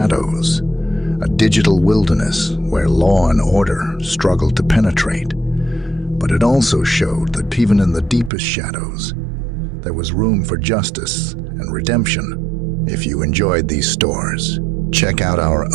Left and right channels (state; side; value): drops out; left; at 8.3 s